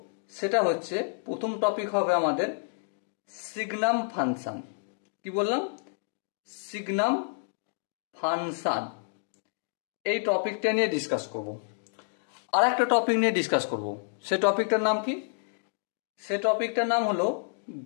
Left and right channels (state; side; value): silent; right; digital silence